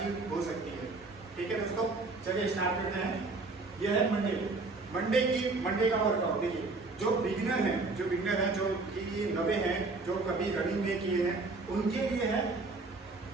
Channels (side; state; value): left; quieter; 3.6 dB